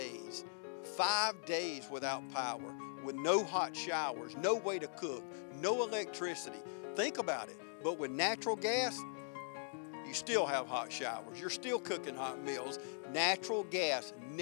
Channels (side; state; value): right; silent; digital silence